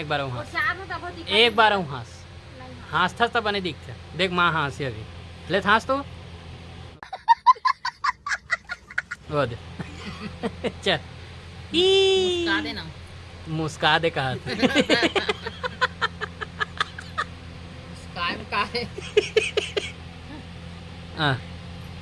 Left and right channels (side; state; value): both; identical; correlation 1.00